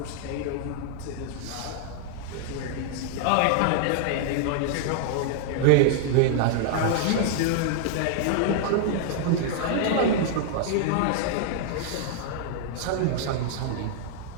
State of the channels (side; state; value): both; different; correlation -0.01